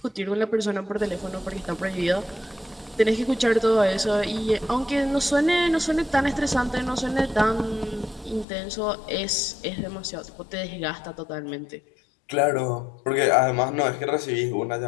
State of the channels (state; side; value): drops out; right; at 8.5 s